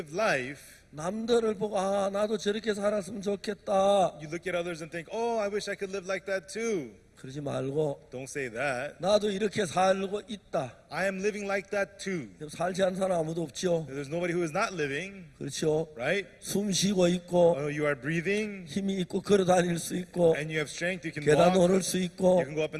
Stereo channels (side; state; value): both; identical; correlation 1.00